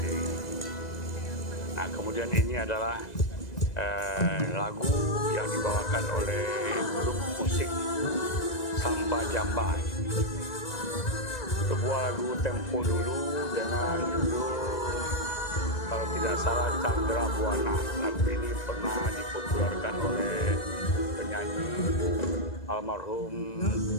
ini. Nah, kemudian ini adalah lagu yang dibawakan oleh grup musik Samba Jamba. Sebuah lagu tempo dulu dengan judul, kalau tidak salah, Chandra Buana. Lagu ini pernah dipopulerkan oleh penyanyi almarhum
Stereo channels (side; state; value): right; late; 1.9 ms